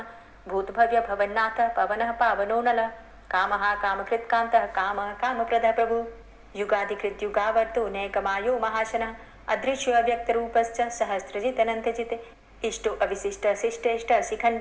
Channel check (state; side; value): identical; both; correlation 1.00